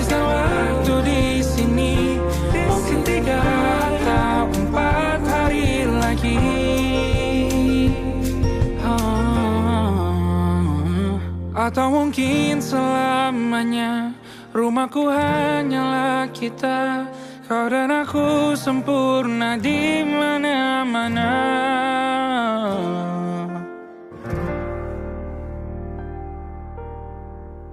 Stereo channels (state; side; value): identical; both; correlation 1.00